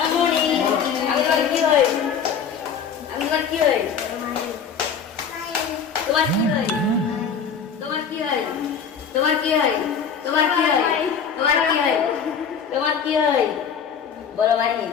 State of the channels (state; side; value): quieter; right; 6.8 dB